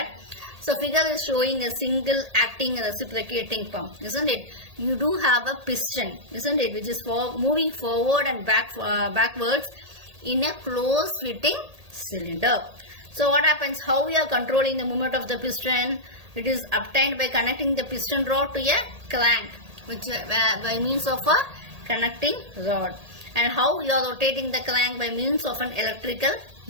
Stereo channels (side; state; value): left; late; 1.8 ms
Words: So figure is showing a single acting reciprocating pump, isn't it? You do have a piston, isn't it, which is moving forward and backwards in a closed fitting cylinder. So what happens? How we are controlling the movement of the piston? It is obtained by connecting the piston rod to a crank, which by means of a connecting rod. And how you are rotating the crank? By means of an electrical